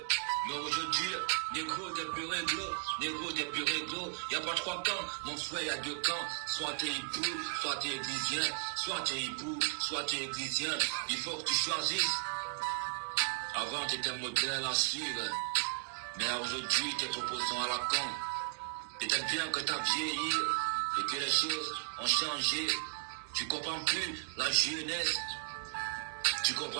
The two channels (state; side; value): silent; left; digital silence